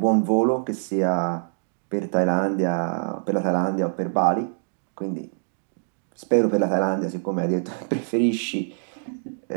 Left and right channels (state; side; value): silent; left; digital silence